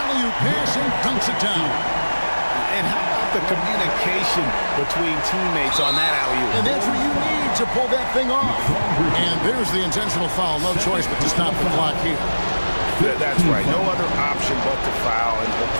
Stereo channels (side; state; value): both; inverted; correlation -1.00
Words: pass and dunks it down. And how about the communication between teammates on that alley-oop? And that's what you need to pull that thing off. And there's the intentional foul. No choice but to stop the clock here. That's right. No other option but to foul and hope